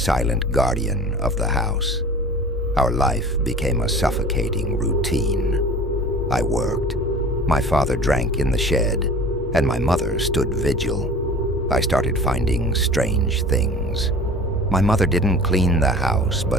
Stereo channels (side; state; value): both; normal; correlation 0.42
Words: guardian of the house. Our life became a suffocating routine. I worked. My father drank in the shed, and my mother stood vigil. I started finding strange things. My mother didn't clean the house,